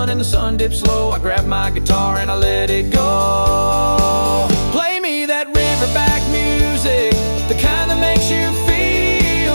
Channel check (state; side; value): inverted; both; correlation -1.00